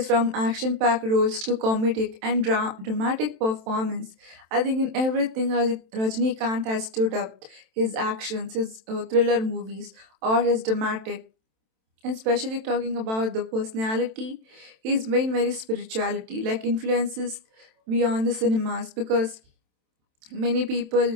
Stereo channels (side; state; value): left; late; 27 ms